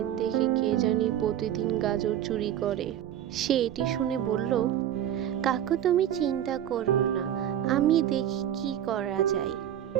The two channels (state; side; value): quieter; left; 10.8 dB